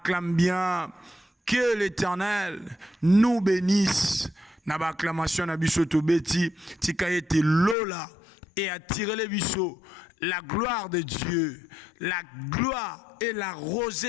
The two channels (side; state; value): right; drops out; at 7.8 s